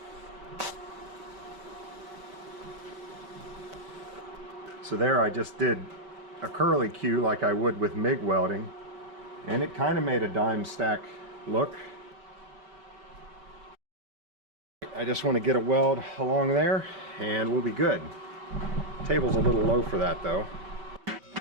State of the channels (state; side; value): late; left; 5.1 ms